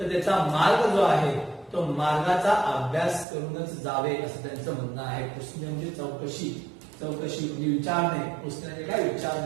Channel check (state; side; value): drops out; left; at 3.2 s